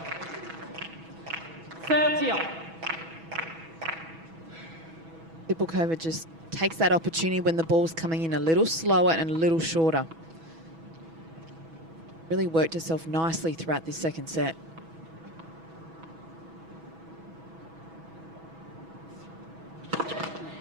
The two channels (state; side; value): late; left; 6.1 ms